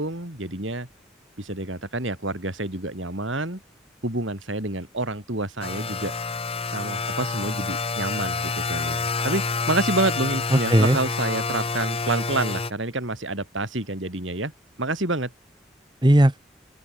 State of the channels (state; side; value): normal; both; correlation 0.42